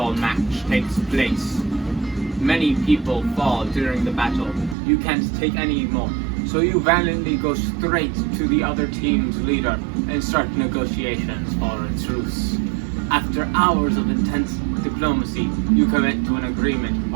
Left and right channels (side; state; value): left; drops out; at 4.8 s